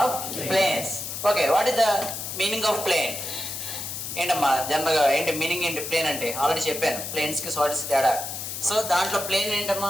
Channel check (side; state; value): left; noise; hiss, 6 dB below the sound